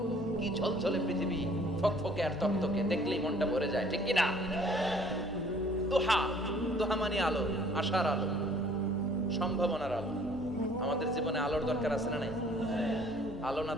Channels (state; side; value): normal; both; correlation 0.56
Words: কি ঝলঝলে পৃথিবী, ফকফকে আর তকতকে, দেখলেই মনটা ভরে যায়, ঠিক কি না? দুহা, দুহা মানে আলো, আশার আলো, সম্ভাবনার আলো। আমাদের জীবনে আলোর দরকার আছে না নাই? আলো না